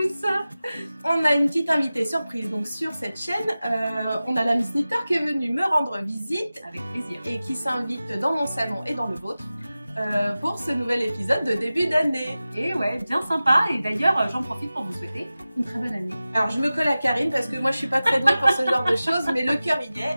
On a une petite invitée surprise donc sur cette chaîne. On a la Miss Knitter qui est venue me rendre visite avec plaisir et qui s'invite dans mon salon et dans le vôtre pour ce nouvel épisode de début d'année. Et ouais, bien sympa. Et d'ailleurs, j'en profite pour vous souhaiter une très bonne année. Alors je me colle à Karine parce que moi je suis pas très douée pour ce genre de choses, mais le cœur y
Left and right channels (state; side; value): inverted; both; correlation -0.96